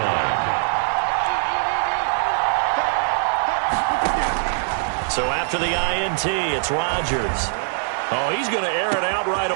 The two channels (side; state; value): left; silent; 58 dB below the other